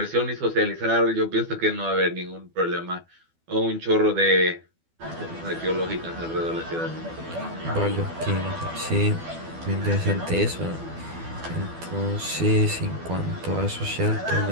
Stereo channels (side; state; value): left; late; 12 ms